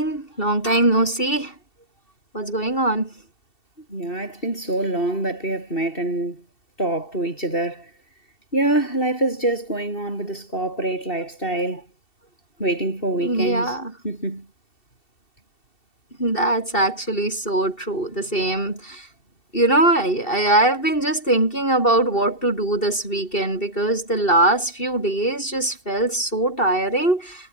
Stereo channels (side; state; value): right; late; 2.7 ms